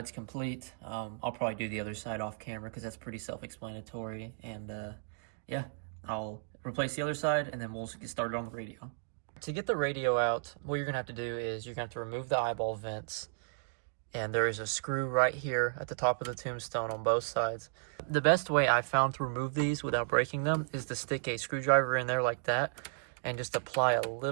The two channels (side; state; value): left; silent; digital silence